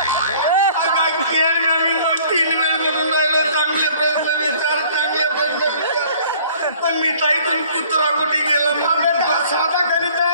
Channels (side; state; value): both; inverted; correlation -0.54